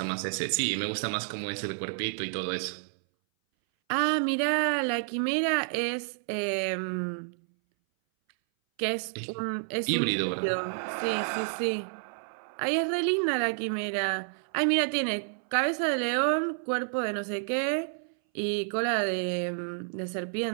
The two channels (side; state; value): left; silent; 58 dB below the other